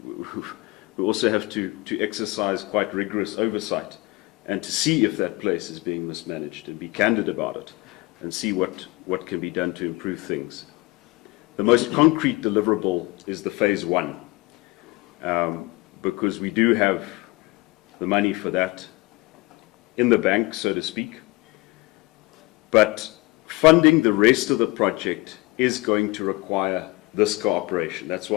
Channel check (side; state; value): right; quieter; 22.8 dB